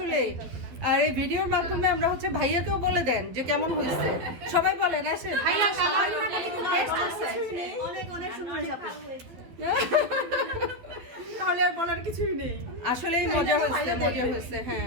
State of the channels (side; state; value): left; late; 12 ms